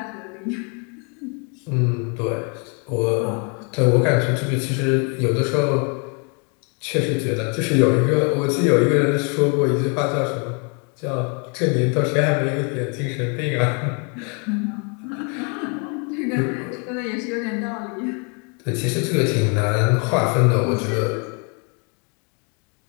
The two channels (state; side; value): quieter; right; 36.3 dB